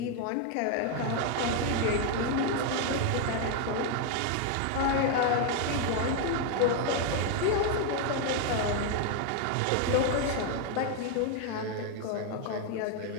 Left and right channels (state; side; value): different; both; correlation 0.01